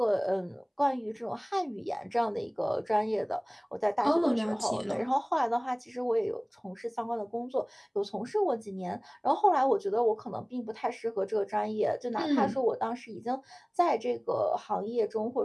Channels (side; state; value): both; identical; correlation 1.00